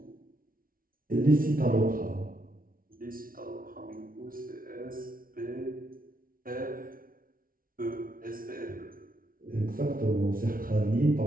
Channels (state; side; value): late; left; 0.42 ms